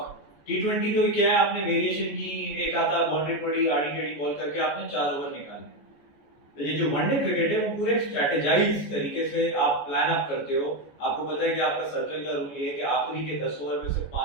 टी20 तो क्या है, आपने वेरिएशन की, एक आता बाउंड्री पड़ी आड़ी टेढ़ी बॉल करके आपने 4 ओवर निकाले। तो ये जो वनडे क्रिकेट है वो पूरे स्ट्रेटेजाइज तरीके से आप प्लान अप करते हो। आपको पता है कि आपका सर्कल का रूल ये है कि आखिरी के 10 ओवर में सिर्फ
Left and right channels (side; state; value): right; late; 14 ms